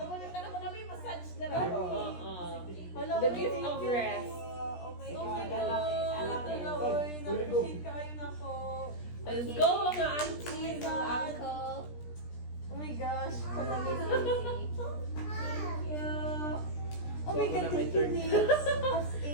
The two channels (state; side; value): late; right; 17 ms